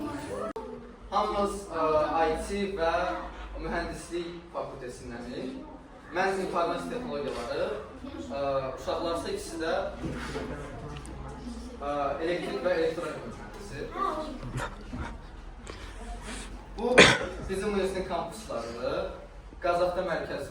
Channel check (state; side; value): identical; both; correlation 1.00